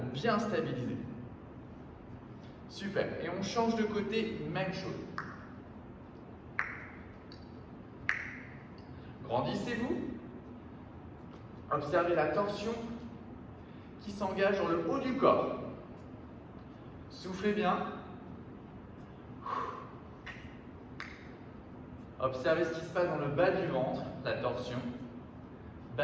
bien stabiliser. Super. Et on change de côté, même chose. Grandissez-vous. Observez la torsion qui s'engage dans le haut du corps. Soufflez bien. Observez ce qui se passe dans le bas du ventre, la torsion.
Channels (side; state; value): both; identical; correlation 1.00